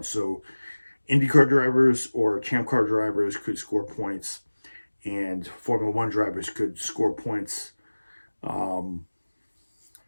So IndyCar drivers or Champ Car drivers could score points, and Formula One drivers could score points. At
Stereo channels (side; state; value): both; inverted; correlation -1.00